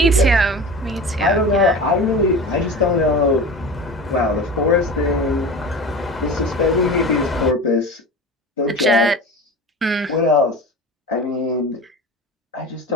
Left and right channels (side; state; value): both; normal; correlation 0.33